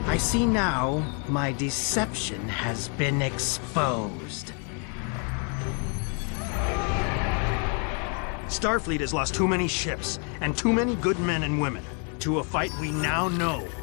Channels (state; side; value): quieter; right; 39.2 dB